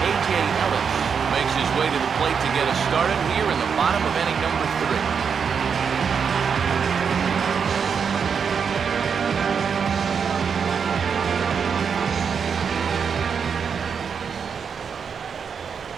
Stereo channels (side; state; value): left; quieter; 6.5 dB